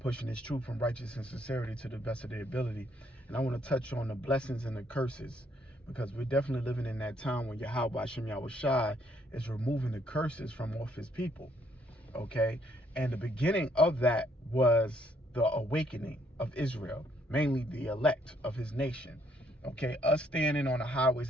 this truth from righteousness and sincerity to the best of their ability. And I want to touch on the blessings and the curses, because we're definitely living in that time when Yahweh, Bashem, Yahweh Shai is removing the curses from off his people. Okay, and the beginning of that was the awakening of Israel, mainly the elect of his nation. Okay, us standing on the highways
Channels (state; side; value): normal; both; correlation 0.69